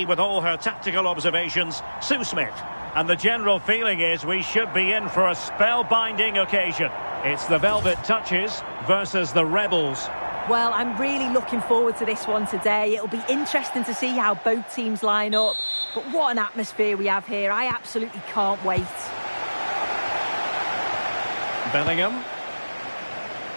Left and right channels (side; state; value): both; inverted; correlation -1.00